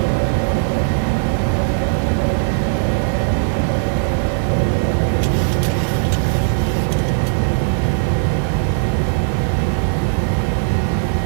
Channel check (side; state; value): left; silent; digital silence